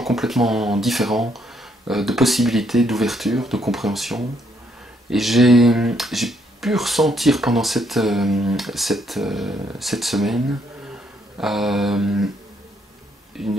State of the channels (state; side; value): normal; both; correlation 0.72